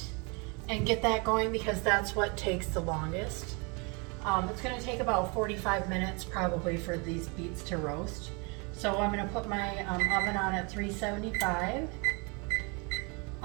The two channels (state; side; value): quieter; left; 31.4 dB